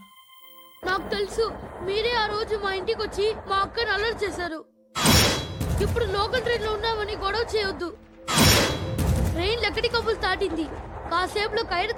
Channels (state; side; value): identical; both; correlation 1.00